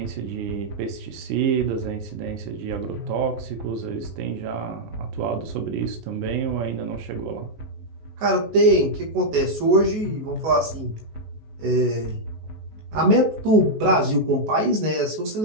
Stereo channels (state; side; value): late; left; 19 ms